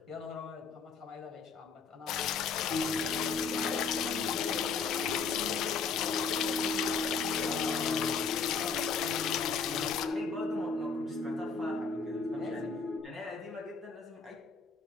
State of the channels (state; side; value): quieter; right; 5.1 dB